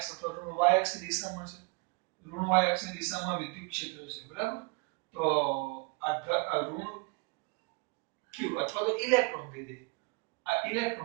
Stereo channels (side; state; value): left; quieter; 29.3 dB